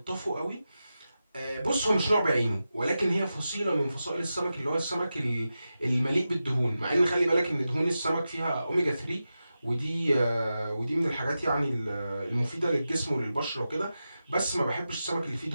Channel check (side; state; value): both; inverted; correlation -0.92